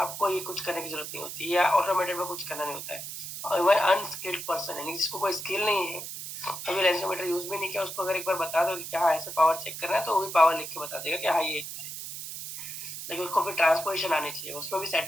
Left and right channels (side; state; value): right; noise; hiss, 8 dB below the sound